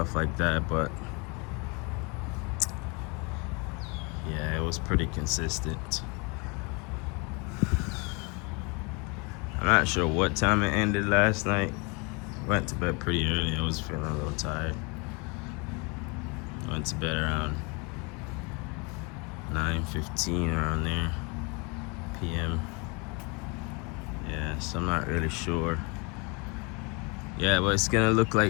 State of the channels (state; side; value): quieter; right; 30.6 dB